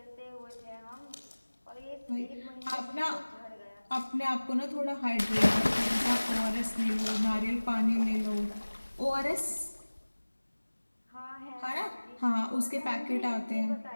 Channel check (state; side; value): inverted; both; correlation -1.00